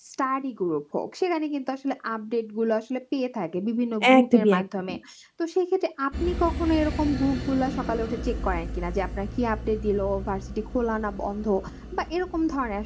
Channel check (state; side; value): identical; both; correlation 1.00